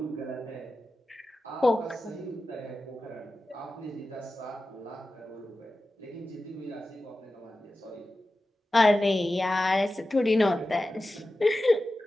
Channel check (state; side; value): normal; both; correlation 0.94